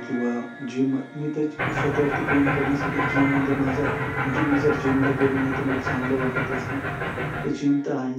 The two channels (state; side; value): identical; both; correlation 1.00